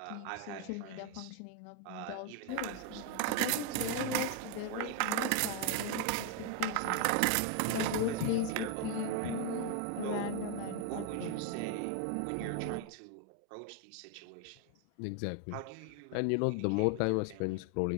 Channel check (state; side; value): different; both; correlation 0.01